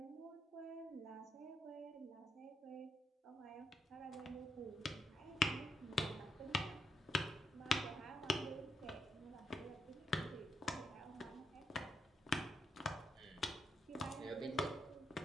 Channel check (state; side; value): normal; both; correlation 0.80